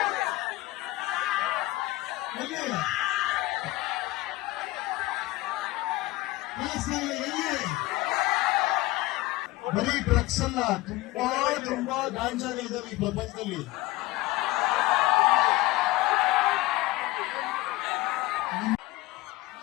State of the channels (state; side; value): quieter; right; 19.0 dB